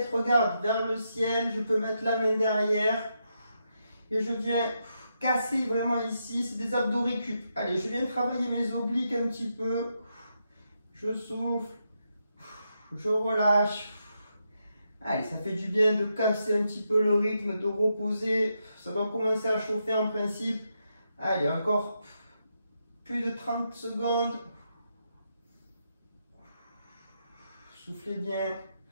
regarde vers le ciel, je peux mettre la main derrière. Et je viens casser vraiment ici, c'est des abdos récup. Allez, je viens travailler mes obliques un petit peu. Je souffle, je relâche. Allez, ça fait du bien de casser un petit peu le rythme, de reposer. Ça doit commencer à chauffer en principe. Allez, encore plus de 30 secondes. Soufflez bien,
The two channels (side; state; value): both; inverted; correlation -0.82